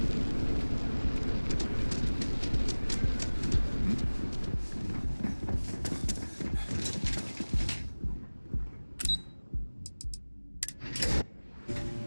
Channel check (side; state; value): both; inverted; correlation -1.00